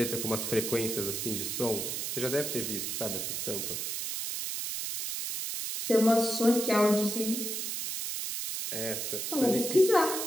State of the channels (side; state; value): right; noise; hiss, 3 dB below the sound